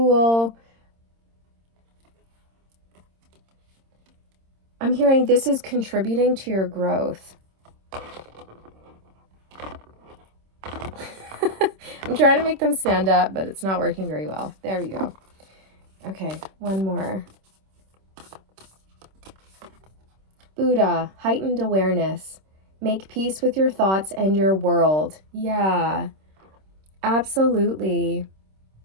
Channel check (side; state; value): left; late; 26 ms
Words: I'm hearing this is contributing to your growth. I'm trying to make them stand up, but it's not working very well. There we go. Okay, one more. Buddha, heightened awareness. Make peace with your thoughts and your world. Yeah, absolutely.